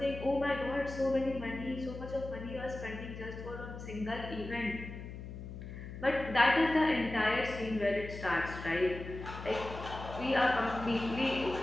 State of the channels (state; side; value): noise; left; hum, 10 dB below the sound